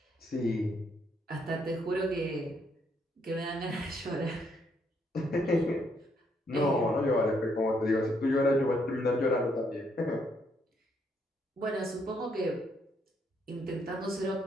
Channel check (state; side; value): normal; both; correlation 0.72